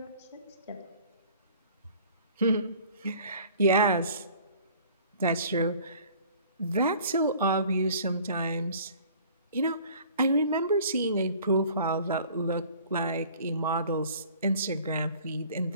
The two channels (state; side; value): inverted; both; correlation -0.50